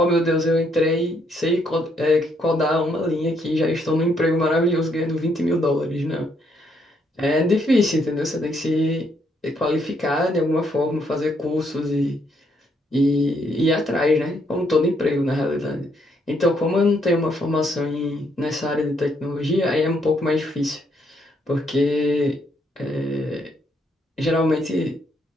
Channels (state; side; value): normal; both; correlation 0.73